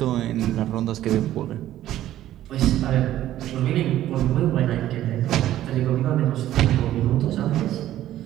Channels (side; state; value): left; quieter; 13.1 dB